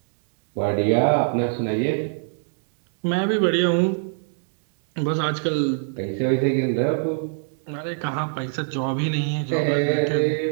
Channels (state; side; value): silent; left; digital silence